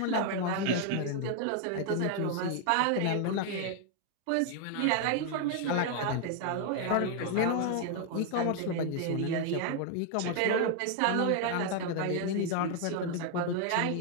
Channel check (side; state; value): both; different; correlation 0.00